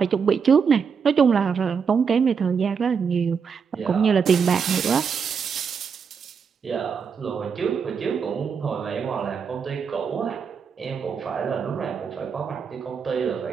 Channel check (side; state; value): left; quieter; 6.2 dB